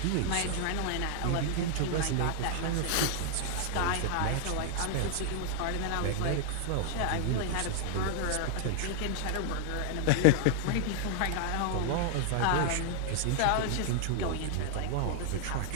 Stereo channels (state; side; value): different; both; correlation 0.00